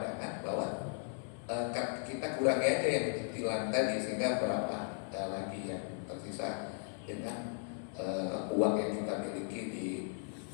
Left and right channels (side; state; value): right; silent; 53 dB below the other